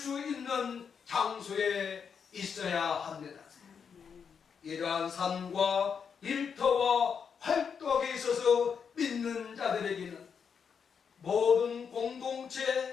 있는 장소에 있어야 합니다. 이러한 삶과 일터와 활동에 있어서 믿는 자들에게는 모든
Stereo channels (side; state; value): right; quieter; 6.7 dB